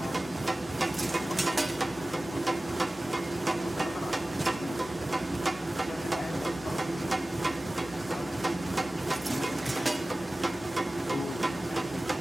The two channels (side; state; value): both; normal; correlation 0.97